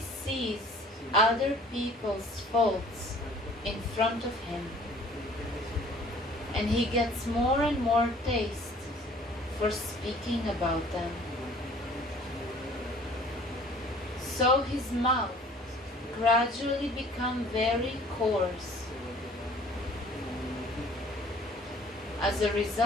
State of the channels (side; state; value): both; normal; correlation 0.52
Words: sees other people's faults in front of him, and he gets more and more taste for speaking about them. So his mouth gradually becomes very coarse. As a